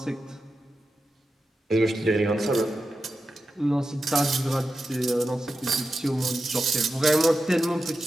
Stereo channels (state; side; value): normal; both; correlation 0.91